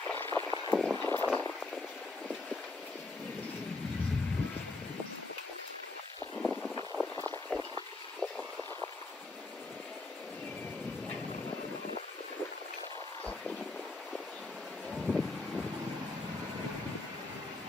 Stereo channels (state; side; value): quieter; right; 3.3 dB